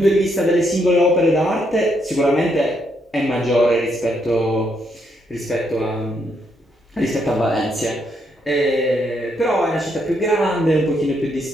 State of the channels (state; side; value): normal; both; correlation 0.76